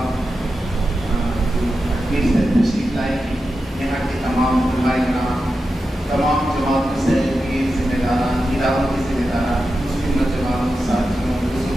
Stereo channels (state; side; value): normal; both; correlation 0.90